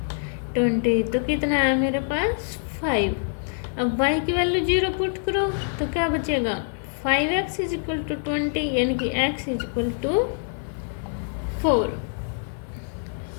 20, तो कितना है मेरे पास 5। अब y की वैल्यू 0 पुट करो तो क्या बचेगा, 5x इज इक्वल टू 20, यानी कि x इज इक्वल टू 4।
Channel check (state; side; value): silent; right; 55 dB below the other